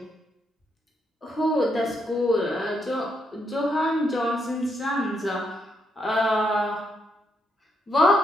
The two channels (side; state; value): both; normal; correlation 0.78